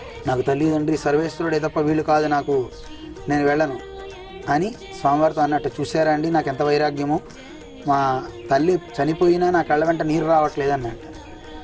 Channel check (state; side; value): identical; both; correlation 1.00